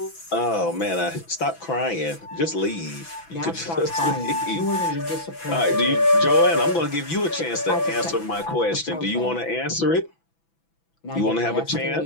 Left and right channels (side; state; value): right; late; 6.0 ms